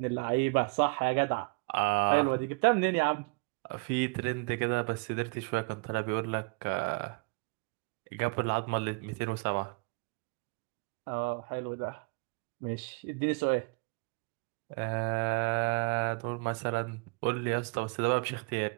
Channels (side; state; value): left; quieter; 31.2 dB